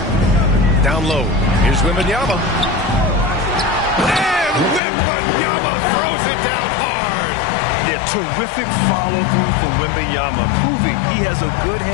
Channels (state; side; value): drops out; right; at 4.8 s